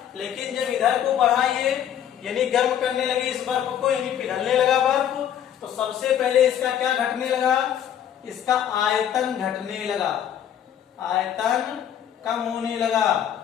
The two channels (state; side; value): quieter; right; 9.9 dB